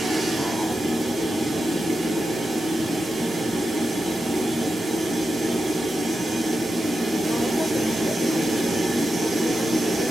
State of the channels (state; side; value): normal; both; correlation 0.89